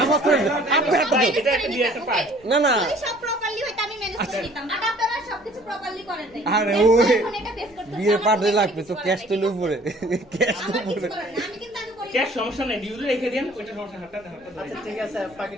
পড়ে আপনি এটা একটা দিয়ে একটা পাই না না সব প্রপারলি হইতো আমি ম্যানেজ করে দিতাম আর আপনারা সবকিছু প্রপারলি করেন নাই আরে ওই এখন এটা বেস করতে বিয়ে পাঠে লাগবে তো ক্যাশ তো উপরে ক্যাশ তো আমার কিছু উপরে করেন না আমি কিন্তু আগে করি ক্যাশ সমস্যা নাই ডিউলে রেখে দেন ওইটা সমস্যা হাতটা আচ্ছা ঠিক আছে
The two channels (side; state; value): left; noise; rumble, 28 dB below the sound